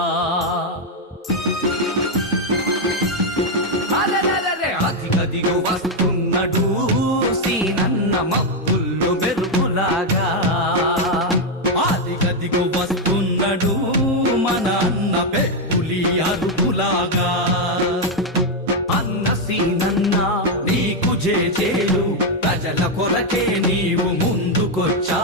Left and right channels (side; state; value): both; normal; correlation 0.03